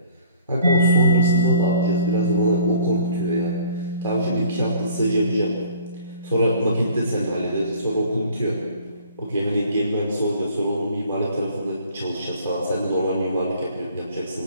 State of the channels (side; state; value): both; inverted; correlation -0.54